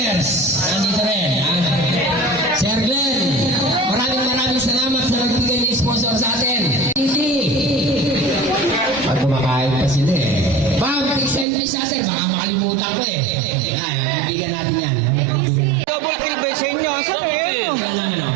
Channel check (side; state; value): left; drops out; at 11.5 s